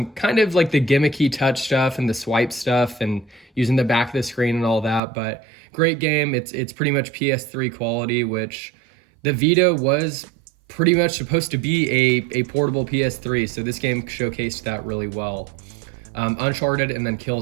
kind of like the gimmicky touch stuff and the swipe stuff and using the back of the screen and all that, but great game. It's pretty much PS3 quality, which the Vita was pretty much supposed to be a portable PS3, so this game showcased that really well. Uncharted and then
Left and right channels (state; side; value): drops out; left; at 5.0 s